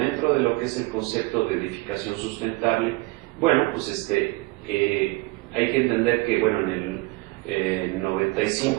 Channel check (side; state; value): left; quieter; 23.3 dB